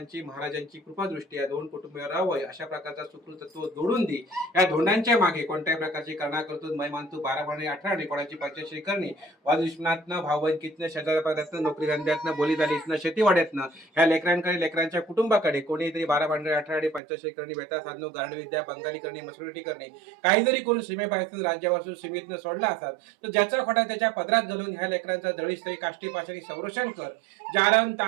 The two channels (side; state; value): left; drops out; at 17.0 s